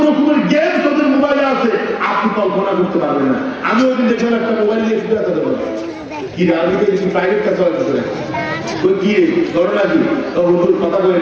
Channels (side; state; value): both; identical; correlation 1.00